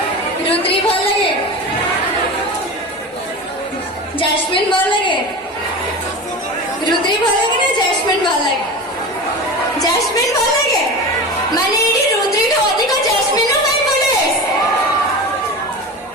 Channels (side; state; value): both; normal; correlation 0.28